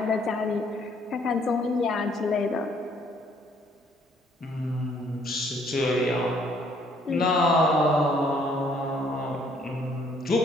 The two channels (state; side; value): normal; both; correlation 0.65